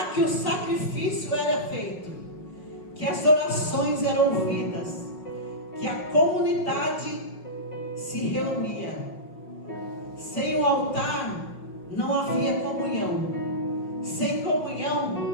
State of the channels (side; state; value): right; late; 5.6 ms